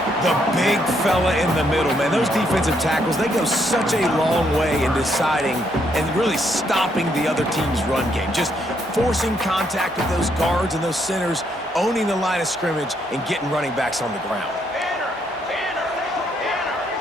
The big fella in the middle, man. Those defensive tackles, they go such a long way in deciding and really stopping the other team's run game. Just forcing contact with those guards and those centers, owning the line of scrimmage, and getting running backs on the ground.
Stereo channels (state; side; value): normal; both; correlation 0.74